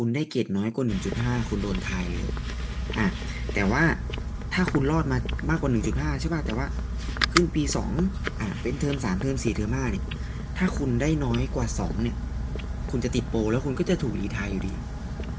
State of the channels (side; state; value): both; identical; correlation 1.00